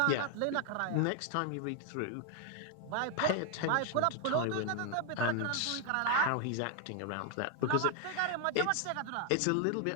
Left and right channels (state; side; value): different; both; correlation 0.00